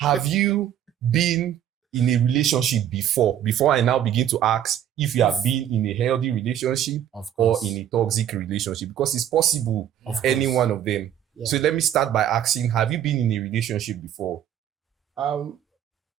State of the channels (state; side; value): quieter; left; 10.5 dB